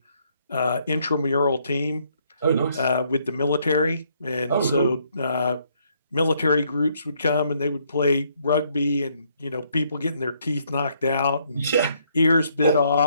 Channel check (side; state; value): both; inverted; correlation -0.70